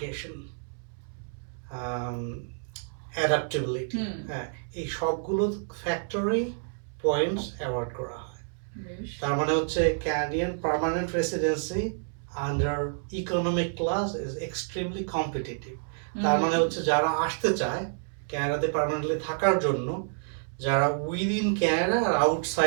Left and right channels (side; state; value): left; silent; 59 dB below the other